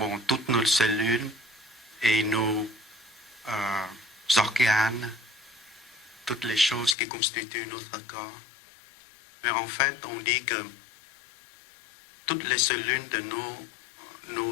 toutes nos cellules et nos organes, toutes les choses qui constituent notre corps. Mais en fait, on dit que toutes les cellules de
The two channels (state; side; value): drops out; right; at 7.0 s